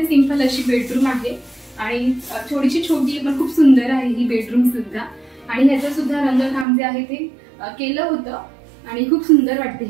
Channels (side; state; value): left; drops out; at 6.7 s